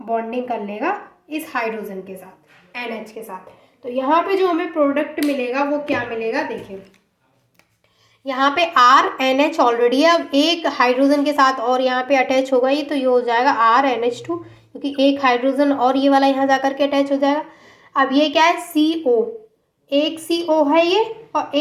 बॉन्डिंग कर लेगा इस हाइड्रोजन के साथ, NH के साथ। तो यहाँ पे जो हमें प्रोडक्ट मिलेगा वो क्या मिलेगा, देखिए यहाँ पे RNH ऑलरेडी है, अब एक हाइड्रोजन के साथ और यहाँ पे अटैच होगा ये, तो ये हो जाएगा RNH2, क्योंकि एक हाइड्रोजन और ये वाला यहाँ जाकर के अटैच हो जाएगा। अब ये क्या है, CO, एक CO है ये और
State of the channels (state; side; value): identical; both; correlation 1.00